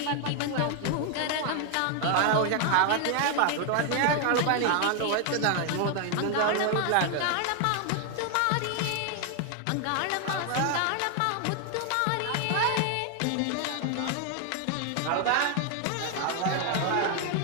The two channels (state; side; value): different; both; correlation 0.00